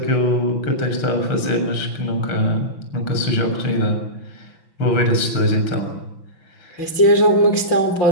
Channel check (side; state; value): right; late; 6.0 ms